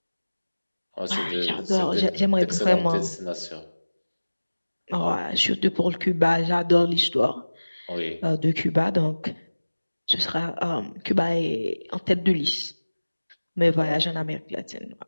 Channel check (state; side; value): inverted; both; correlation -1.00